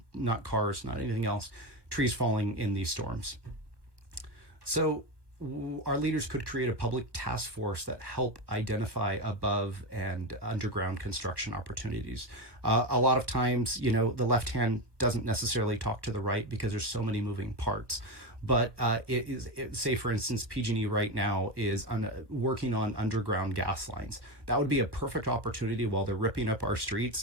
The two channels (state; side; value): late; left; 1.2 ms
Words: cars, not anything else. Trees falling in these storms. So our leaders could create a public task force that help identify above and underground construction opportunities. A lot of times, the left hand doesn't necessarily talk to the right because there's so many moving parts. But say, for instance, PG&E right now is working on underground gas lines. That would be a perfect opportunity while they're ripping up our streets